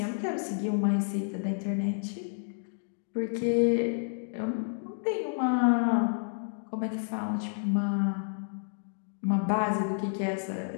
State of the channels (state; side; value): silent; right; digital silence